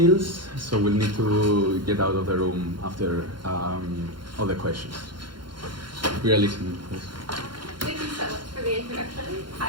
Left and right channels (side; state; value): left; late; 0.72 ms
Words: so we'll need to get out of the room after all the questions. We are listening. Thank you so much for the introduction.